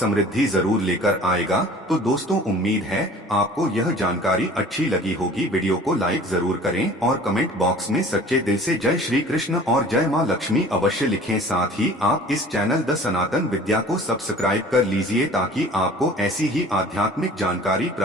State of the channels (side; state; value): both; normal; correlation 0.46